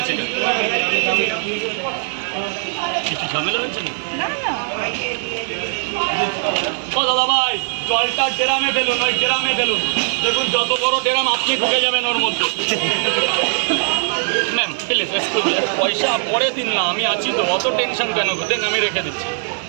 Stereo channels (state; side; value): silent; left; 62 dB below the other